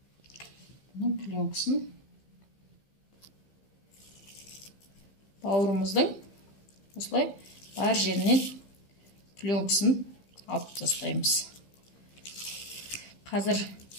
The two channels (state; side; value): late; right; 15 ms